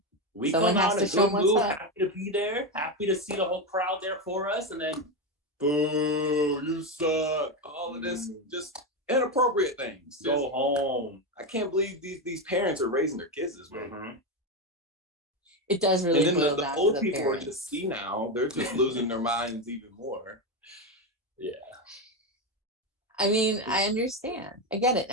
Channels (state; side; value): normal; both; correlation 0.12